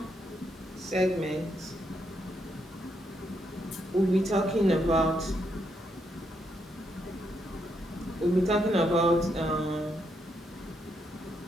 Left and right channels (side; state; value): both; normal; correlation 0.78